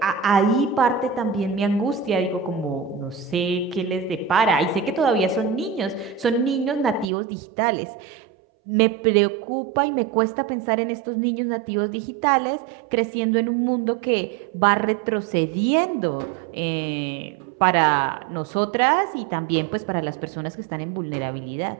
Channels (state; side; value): drops out; left; at 7.1 s